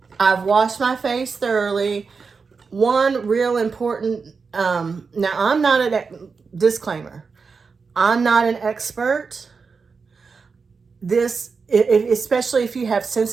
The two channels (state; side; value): quieter; left; 5.0 dB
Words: I've washed my face thoroughly. One real important, now I'm not disclaimer. I'm not an expert. Especially if you have